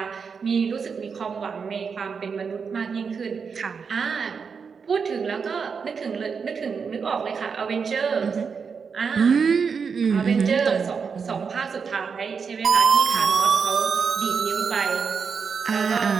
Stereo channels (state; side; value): quieter; left; 5.8 dB